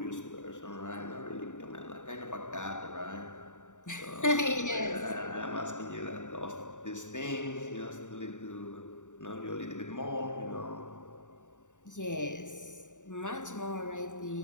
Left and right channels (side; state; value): right; late; 0.86 ms